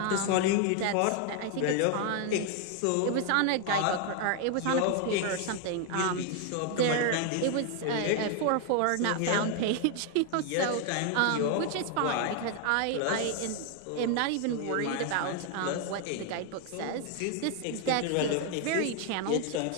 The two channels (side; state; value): both; different; correlation 0.01